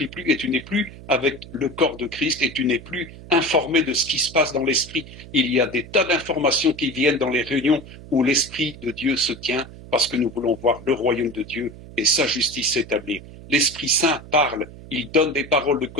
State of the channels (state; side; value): noise; right; hum, 17 dB below the sound